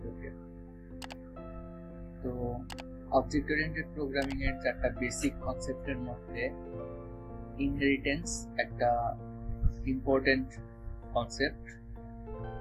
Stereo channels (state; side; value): identical; both; correlation 1.00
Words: তো অবজেক্ট ওরিয়েন্টেড প্রোগ্রামিং এর চারটা বেসিক কনসেপ্টের মধ্যে ইনহেরিটেন্স একটা ইম্পর্টেন্ট কনসেপ্ট।